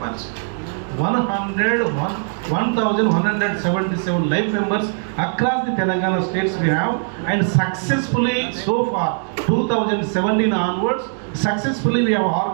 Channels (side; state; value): left; silent; digital silence